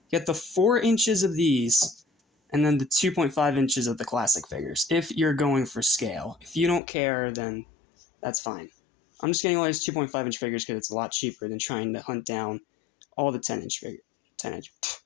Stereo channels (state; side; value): drops out; right; at 6.8 s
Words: get the 4 inches of these, and then the 2.5 inches of the classic figures, if you're going for scale. If you don't care, then that's fine. I'm just getting all these 2.5 inch figures because it's a lot cheaper than trying to hunt down all the